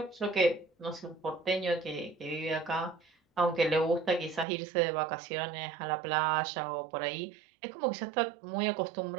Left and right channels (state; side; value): drops out; left; at 4.5 s